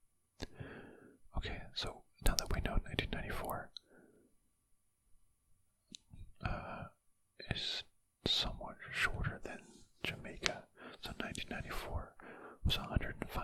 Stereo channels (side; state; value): both; identical; correlation 1.00